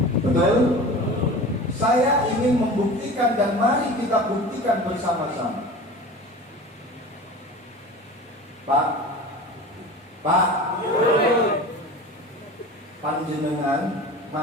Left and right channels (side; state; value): both; normal; correlation 0.36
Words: Betul? Saya ingin membuktikan dan mari kita buktikan bersama-sama. Pak, panjenengan